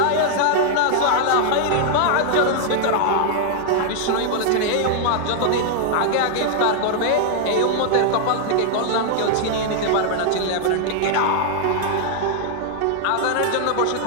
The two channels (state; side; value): different; both; correlation 0.00